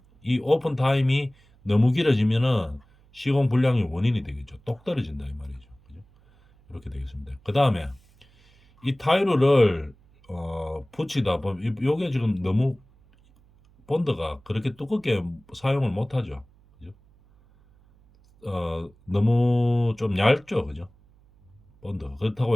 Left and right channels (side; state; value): right; noise; hum, 30 dB below the sound